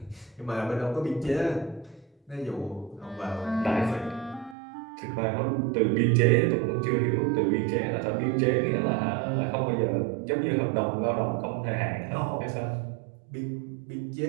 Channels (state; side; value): drops out; left; at 4.5 s